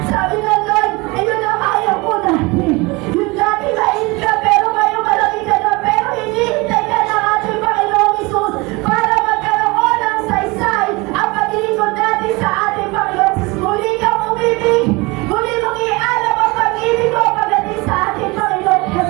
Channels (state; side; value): quieter; left; 24.9 dB